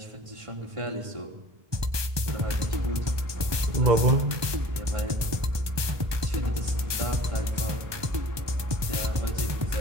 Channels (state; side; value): late; left; 1.2 ms